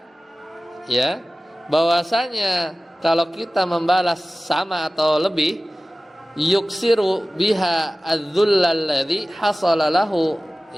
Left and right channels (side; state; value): both; normal; correlation 0.97